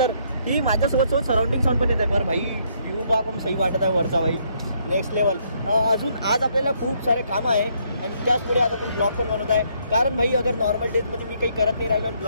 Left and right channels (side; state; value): both; inverted; correlation -0.70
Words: की माझ्यासोबत सराउंडिंग साऊंड पण येत आहे। बरं भाई व्ह्यू बा कम सही वाटत आहे वरचा भाई, नेक्स्ट लेवल। अजून आज आपल्याला खूप सारे कामं आहे आणि त्याच पुढे आज आपण ब्लॉग पण बनवत आहे। कारण भाई अगर नॉर्मल डेजमध्ये मी काही करत नाही राहिलो आणि